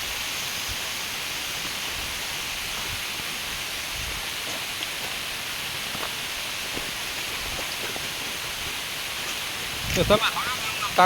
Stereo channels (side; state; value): both; identical; correlation 1.00